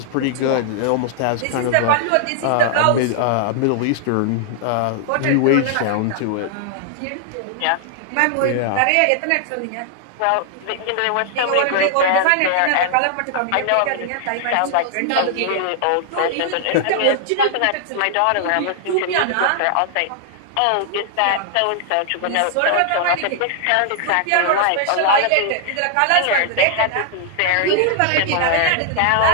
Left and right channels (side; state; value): both; different; correlation -0.01